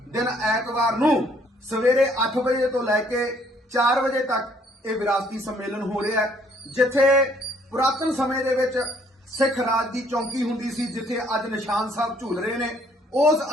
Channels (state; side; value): normal; both; correlation 0.64